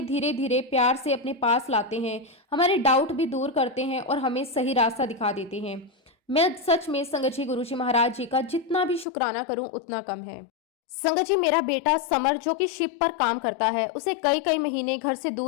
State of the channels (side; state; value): right; drops out; at 9.1 s